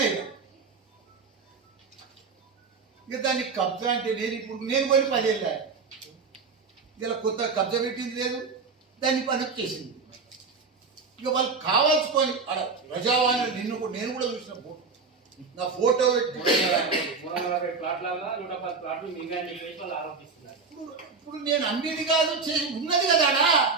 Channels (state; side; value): quieter; left; 4.7 dB